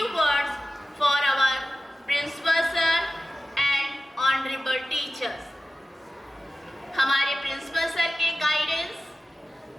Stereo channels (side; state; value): both; normal; correlation 0.95